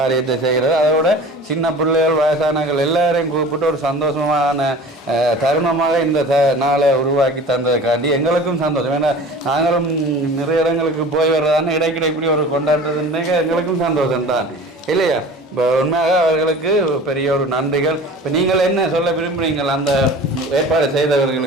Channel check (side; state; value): both; normal; correlation 0.40